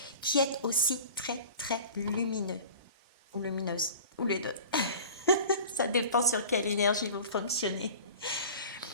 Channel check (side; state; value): both; inverted; correlation -0.40